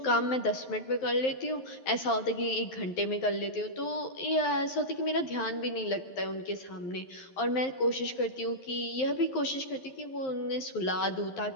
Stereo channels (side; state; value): right; late; 11 ms